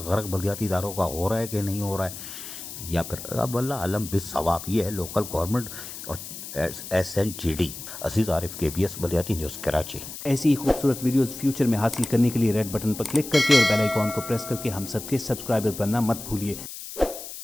गर्क बल्दियाती इदारों का हो रहा है कि नहीं हो रहा है, या फिर अब अल्लाह आलम बिस सवाब। ये है लोकल गवर्नमेंट और SNGD। अजीज आरिफ, KBS बल्दियाती न्यूज़ कराची। ऐसी ही खूबसूरत वीडियोस फ्यूचर में हासिल करने के लिए रेड बटन पर क्लिक करके और बेल आइकॉन को प्रेस करके हम सबके सब्सक्राइबर बनना मत भूलिए।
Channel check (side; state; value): left; noise; hiss, 11 dB below the sound